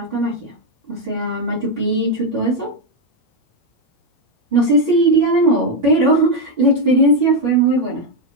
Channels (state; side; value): normal; both; correlation 0.04